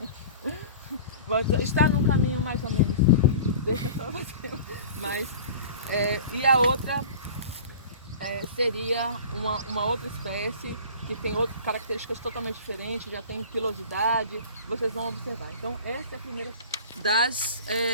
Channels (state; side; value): inverted; both; correlation -0.39